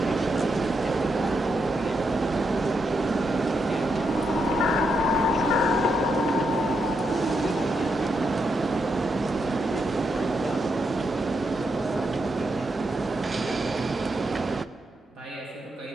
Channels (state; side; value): normal; both; correlation 0.82